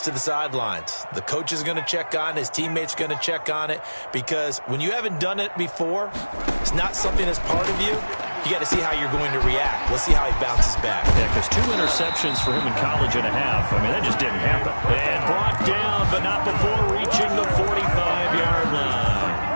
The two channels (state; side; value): inverted; both; correlation -1.00